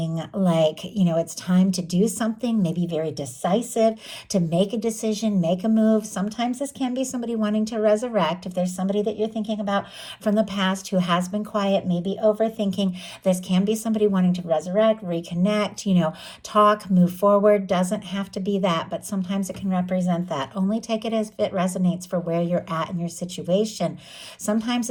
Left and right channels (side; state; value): both; identical; correlation 1.00